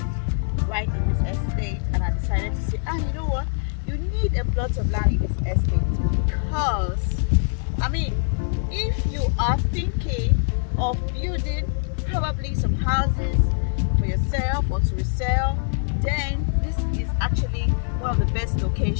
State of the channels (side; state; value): right; silent; digital silence